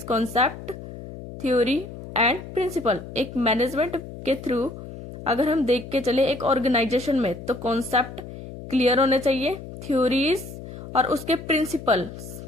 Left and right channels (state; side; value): noise; left; hum, 12 dB below the sound